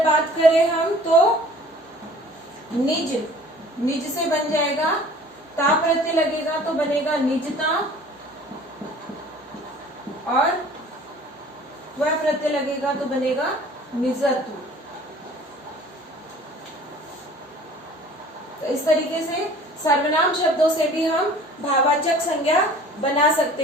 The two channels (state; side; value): normal; both; correlation 0.48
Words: बात करें हम तो निज, निज से बन जाएगा ता प्रत्यय लगेगा तो बनेगा निजता, और वह प्रत्यय लगेगा तो बनेगा निजत्व। तो इस तरीके से सर्वनाम शब्दों से भी हम भाववाचक संज्ञा बना